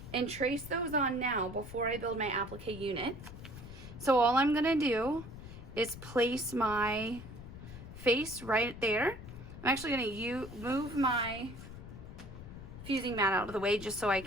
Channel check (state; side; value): noise; left; rumble, 13 dB below the sound